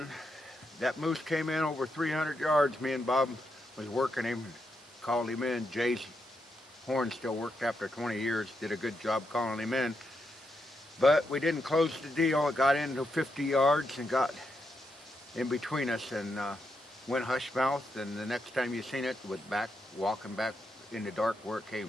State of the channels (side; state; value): both; normal; correlation 0.83